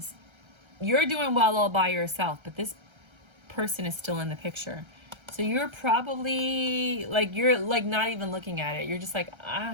You're doing well all by yourself, but this person is still in the picture. So you're probably, like, you're, like, not even looking at it. You're just like, I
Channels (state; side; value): late; left; 1.3 ms